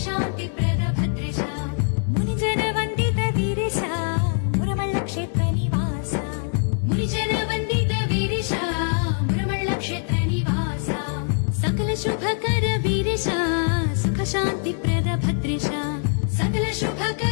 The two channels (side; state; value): right; silent; 60 dB below the other